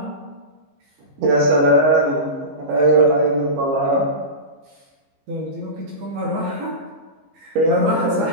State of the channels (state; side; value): late; left; 15 ms